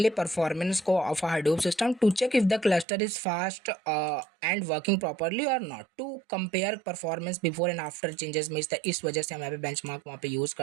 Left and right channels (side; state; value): left; drops out; at 2.9 s